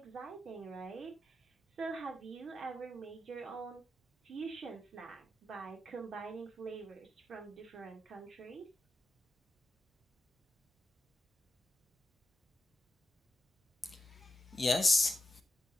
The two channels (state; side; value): normal; both; correlation 0.87